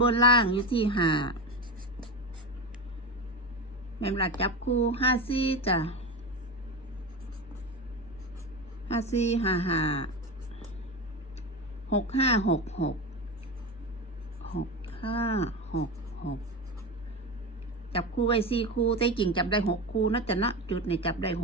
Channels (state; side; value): normal; both; correlation 0.21